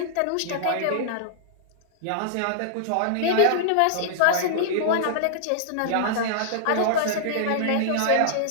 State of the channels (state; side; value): different; both; correlation -0.02